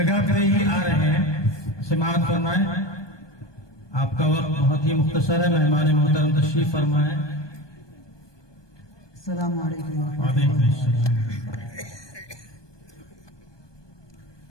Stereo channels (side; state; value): right; late; 1.2 ms